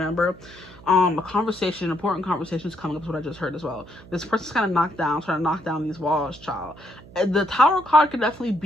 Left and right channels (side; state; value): right; noise; hum, 20 dB below the sound